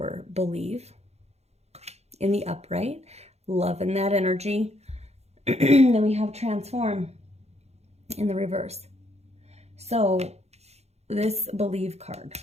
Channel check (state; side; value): late; left; 0.31 ms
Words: Believe in the upright, Love in that energy. Then we have Transform in the reverse. So, this Believe card